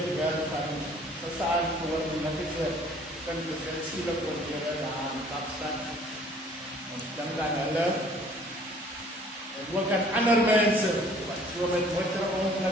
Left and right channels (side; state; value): both; normal; correlation 0.55